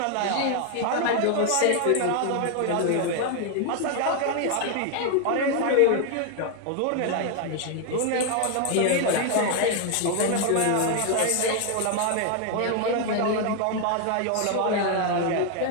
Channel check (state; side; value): different; both; correlation 0.00